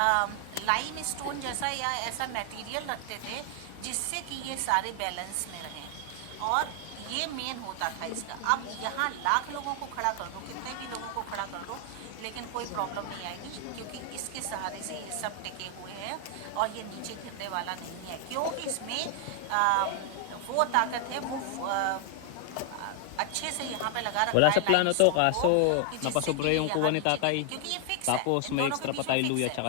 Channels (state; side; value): different; both; correlation 0.00